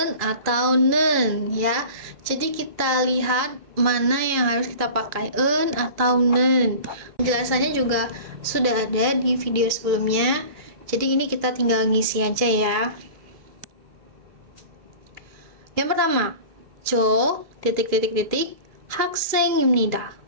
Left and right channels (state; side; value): late; left; 2.4 ms